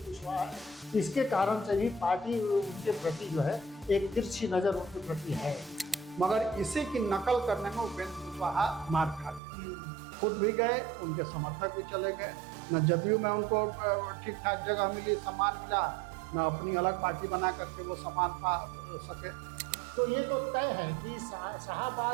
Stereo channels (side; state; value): left; drops out; at 9.4 s